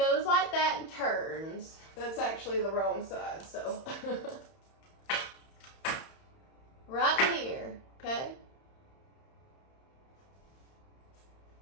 like that and turns. That's actually the wrong side, so. Right here, okay?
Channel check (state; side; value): late; right; 31 ms